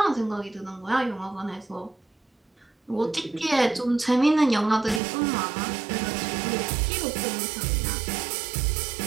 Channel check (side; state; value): left; drops out; at 5.0 s